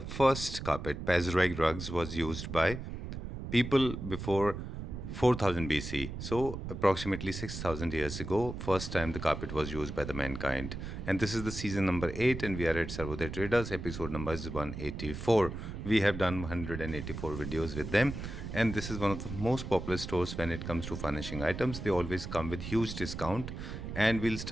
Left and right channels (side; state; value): right; noise; rumble, 7 dB below the sound